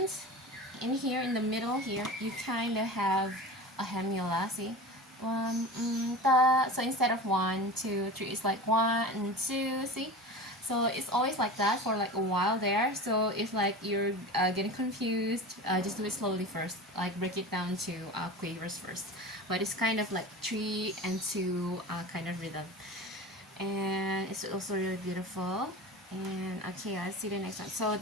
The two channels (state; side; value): normal; both; correlation 0.32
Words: in here in the middle here you kind of have a hemula. See, so instead of 1 2 3, it's like 1 and 2. See, so it's always like that for like a while there. So if like you're getting confused, just do it slowly first, like break it down to quavers first. But it's kind of like 3 and 2 kind of rhythm, and it's also really beautiful. And okay, let's see the next one. So